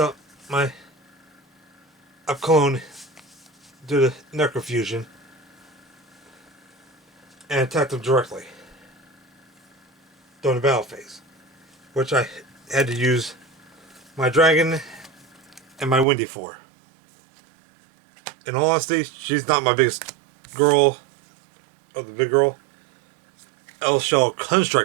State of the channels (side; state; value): left; drops out; at 16.1 s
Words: my clone due to necrofusion and attacked him directly during the battle phase, which I had to use my dragon and my Windy for. In all honesty, she's not my biggest girl, or the big girl. L-Shell